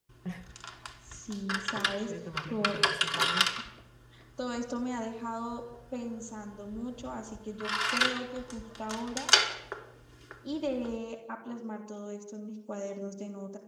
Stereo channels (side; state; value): both; identical; correlation 1.00